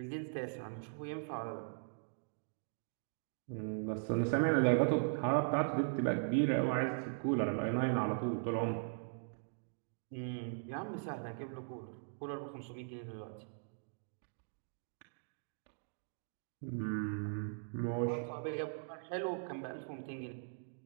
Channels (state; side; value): silent; left; digital silence